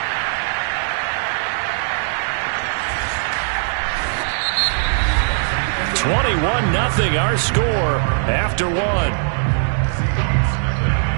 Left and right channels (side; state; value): left; silent; digital silence